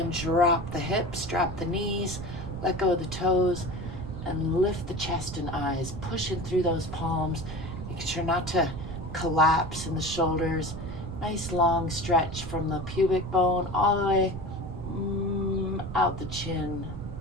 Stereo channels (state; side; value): noise; right; rumble, 8 dB below the sound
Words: drop the hips, drop the knees, let go of the toes, and lift the chest and eyes, pushing through those palms. Make sure not to collapse in the shoulders. Nice long stretch from the pubic bone all the way out the chin.